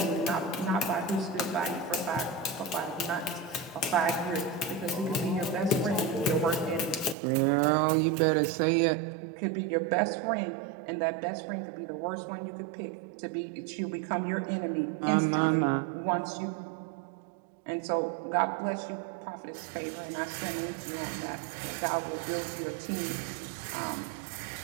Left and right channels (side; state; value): left; drops out; at 7.2 s